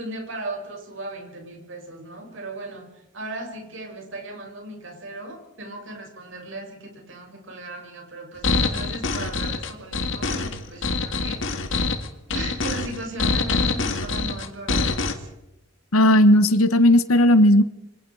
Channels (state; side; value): normal; both; correlation 0.44